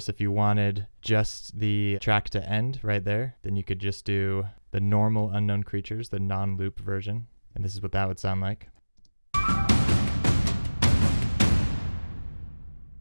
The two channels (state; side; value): inverted; both; correlation -1.00